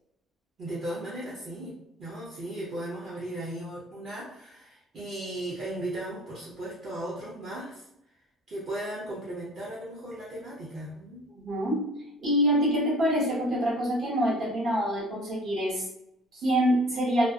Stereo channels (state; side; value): normal; both; correlation 0.48